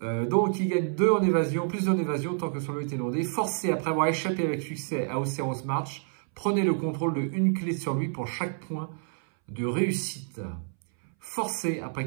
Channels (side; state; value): left; silent; 59 dB below the other